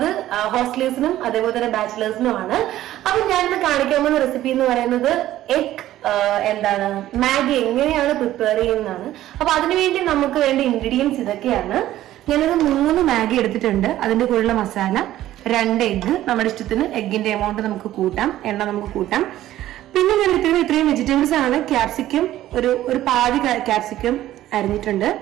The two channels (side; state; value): left; quieter; 13.8 dB